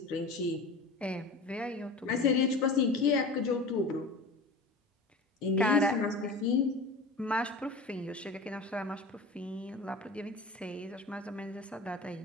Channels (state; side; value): quieter; right; 3.2 dB